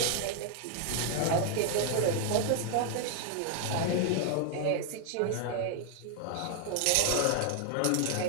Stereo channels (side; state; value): both; different; correlation 0.00